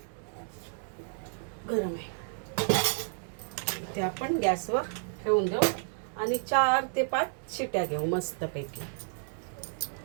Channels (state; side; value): silent; left; 57 dB below the other